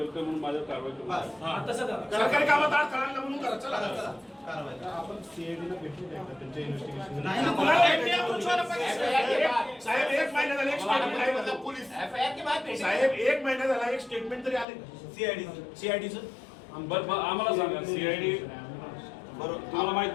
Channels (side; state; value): right; drops out; at 14.7 s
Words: म्हणून माझ्यावर कारवाई करू. सरकारी कामात अडथळा आणला म्हणून करा. चला आपण सीआयडीला भेटू द्या त्यांच्या इन्व्हेस्टिगेशन. साहेब एक महिना झाला एक स्टेटमेंट आहे पोलीस साहेब, एक महिना झाला एक स्टेटमेंट तरी आले सीआयडीचं. आम्हाला सांगा सीआयडी तुम्हाला माहित